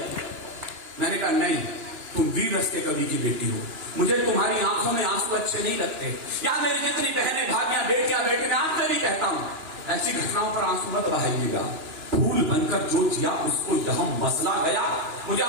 मैंने कहा नहीं, तुम वीर रस के कवि की बेटी हो, मुझे तुम्हारी आंखों में आंसू अच्छे नहीं लगते। या मेरी जितनी बहनें भाभियां बेटियां बेटे, मैं आपसे भी कहता हूं ऐसी घटनाओं पर आंसू मत बहाइएगा। फूल बनकर जो जिया उसको यहां मसला गया। मुझे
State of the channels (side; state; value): left; late; 2.9 ms